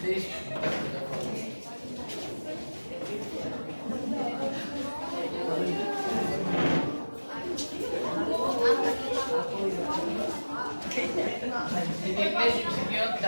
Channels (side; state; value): both; inverted; correlation -1.00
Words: Sige, please execute